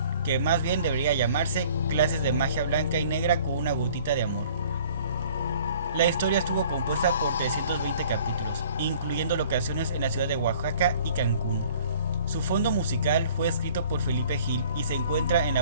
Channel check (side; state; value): both; inverted; correlation -0.53